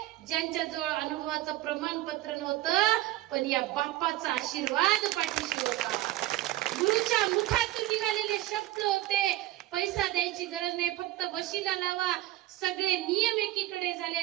ज्यांच्याजवळ अनुभवाचं प्रमाणपत्र नव्हतं, पण या बापाचा आशीर्वाद पाठीशी होता. गुरुच्या मुखातून निघालेले शब्द होते, पैसा द्यायची गरज नाही, फक्त वशिला लावा. सगळे नियम एकीकडे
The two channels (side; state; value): left; quieter; 16.0 dB